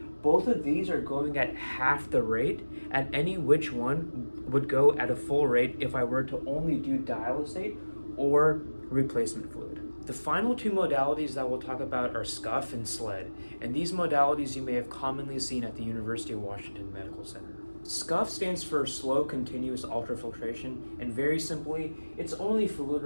both of these are going at half the rate, and any which one would go at a full rate if I were to only do dialysate or replacement fluid. The final two modalities that we'll talk about are SCUF and SLED, and these modalities you may have commonly seen at the University of Washington Medical Center. SCUF stands for slow continuous ultrafiltration, and very simply, it's only fluid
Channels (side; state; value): both; inverted; correlation -1.00